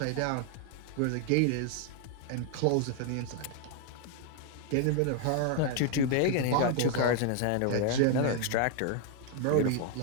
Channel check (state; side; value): different; both; correlation 0.00